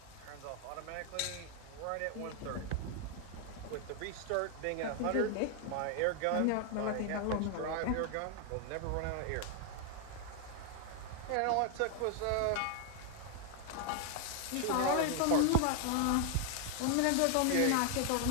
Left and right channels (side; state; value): both; different; correlation 0.00